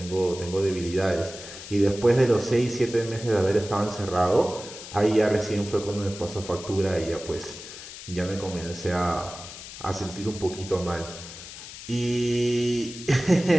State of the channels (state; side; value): noise; left; hiss, 13 dB below the sound